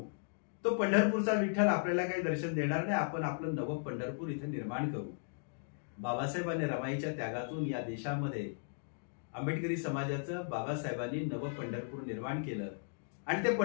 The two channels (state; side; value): silent; right; digital silence